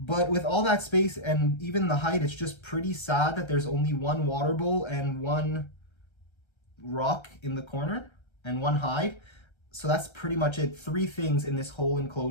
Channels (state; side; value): late; right; 1.3 ms